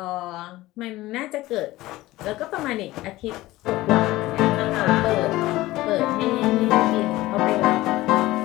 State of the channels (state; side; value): quieter; right; 17.8 dB